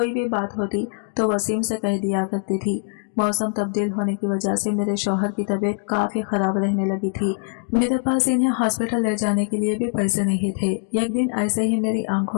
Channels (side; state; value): right; silent; 64 dB below the other